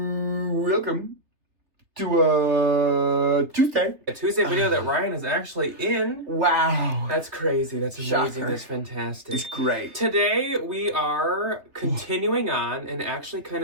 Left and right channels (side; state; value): left; late; 3.5 ms